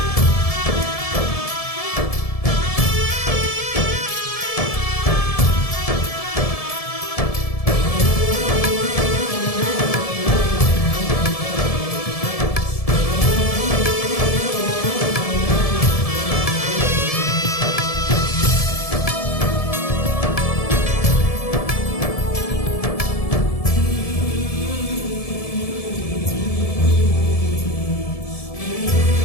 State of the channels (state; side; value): late; right; 1.7 ms